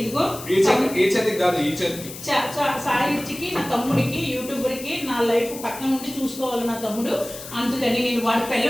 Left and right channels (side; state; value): left; noise; hiss, 13 dB below the sound